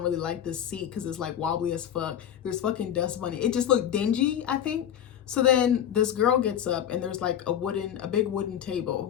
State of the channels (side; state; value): right; quieter; 9.9 dB